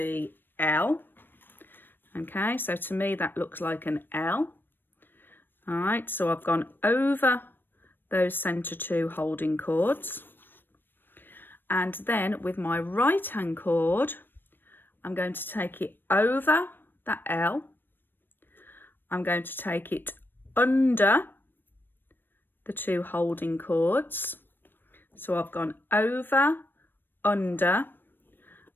L. Okay, so to me that looks like an L. All right, so I've gone over those center 2 holding cords. And then with my right hand cord, I'm going to take it over that L. I'm going to take it under the 2 holding cords. So I've gone over, under,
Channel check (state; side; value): late; right; 0.095 ms